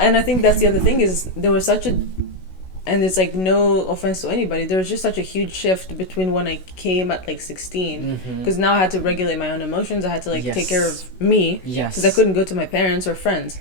and I think that's the other thing is there was such a, and it's like no offense to anybody. There was just such a huge shift between when I came at like 16, because now I had to regulate my own emotions. I had to like take care of me. Because I couldn't go to my parents or friends.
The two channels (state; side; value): late; right; 16 ms